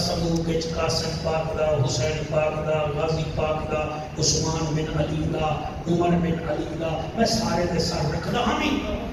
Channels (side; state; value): both; identical; correlation 1.00